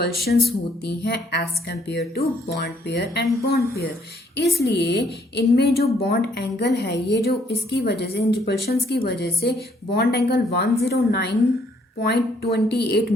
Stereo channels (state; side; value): normal; both; correlation 0.66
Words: होती हैं as compare to bond pair and bond pair, इसलिए इनमें जो बॉन्ड एंगल है, ये जो इसकी वजह से, इन रिपल्शंस की वजह से बॉन्ड एंगल 109.28